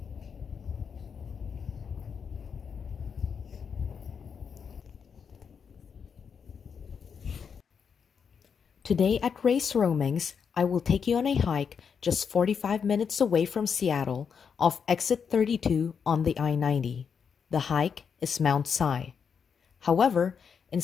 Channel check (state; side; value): quieter; right; 6.6 dB